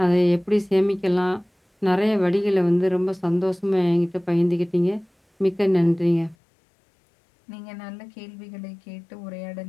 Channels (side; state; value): right; drops out; at 6.4 s